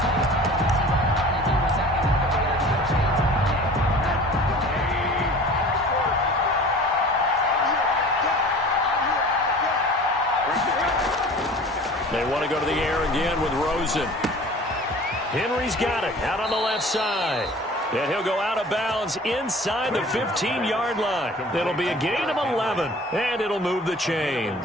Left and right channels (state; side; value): normal; both; correlation 0.44